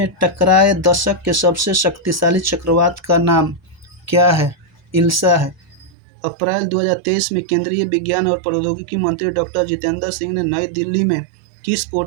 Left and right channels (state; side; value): drops out; left; at 5.9 s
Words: टकराए दशक के सबसे शक्तिशाली चक्रवात का नाम क्या है? इल्सा है। अप्रैल 2023 में केंद्रीय विज्ञान और प्रौद्योगिकी मंत्री डॉक्टर जितेंद्र सिंह ने नई दिल्ली में किस